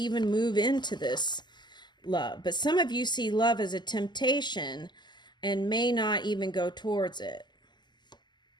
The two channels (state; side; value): late; right; 0.21 ms